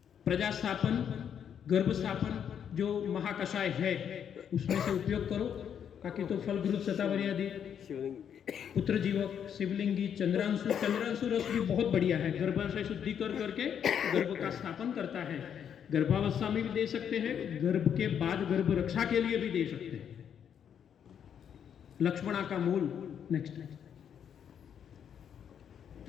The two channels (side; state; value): right; quieter; 8.4 dB